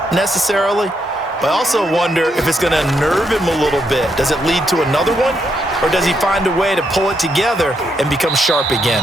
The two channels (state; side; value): normal; both; correlation 0.78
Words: necessarily, but I also wonder if it's going to nerve him a little bit. Does it lead to another one, or does he find a way to pull it together and become sharp again?